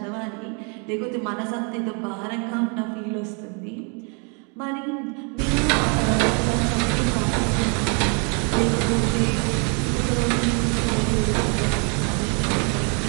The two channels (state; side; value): quieter; left; 36.3 dB